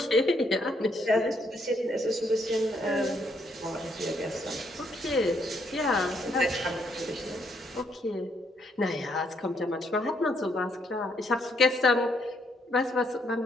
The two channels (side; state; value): both; normal; correlation 0.72